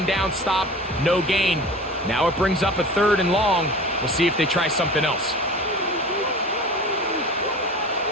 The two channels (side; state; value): both; normal; correlation 0.37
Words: down stop, no gain. Now it brings up a 3rd and long. We'll see if they try something else.